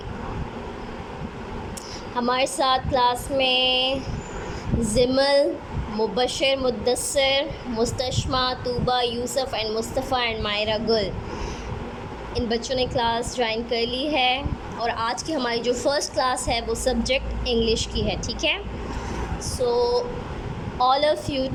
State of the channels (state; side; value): identical; both; correlation 1.00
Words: हमारे साथ class में Zimal, Mubashir, Muddassir, Mustashma, Tooba, Yusuf and Mustafa and Maira Gul, इन बच्चों ने क्लास ज्वाइन कर ली है। और आज की हमारी जो फ़र्स्ट क्लास है वो सब्जेक्ट इंग्लिश की है, ठीक है। So all of you